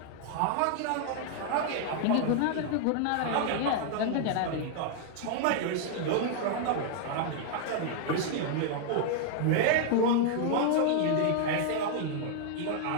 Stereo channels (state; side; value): different; both; correlation 0.00